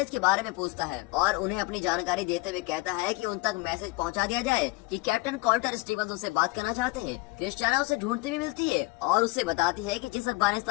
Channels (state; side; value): quieter; right; 23.0 dB